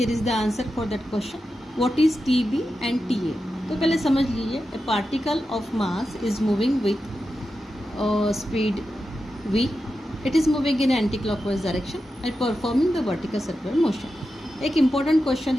is the answer for that question. What is TB and TA? तो पहले समझ लीजिए, ए particle of mass is moving with speed v, it is moving in anti-clockwise direction and performing the vertical circular motion। एक important question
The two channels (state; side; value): normal; both; correlation 0.90